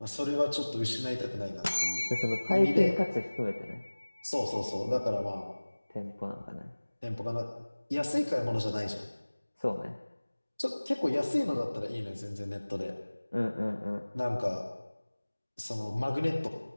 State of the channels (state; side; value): inverted; both; correlation -1.00